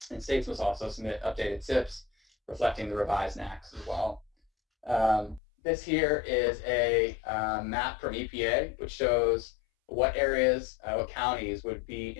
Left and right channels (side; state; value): right; drops out; at 5.4 s